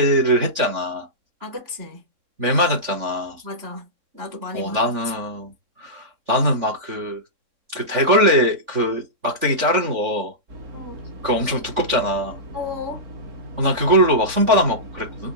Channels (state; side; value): late; left; 3.4 ms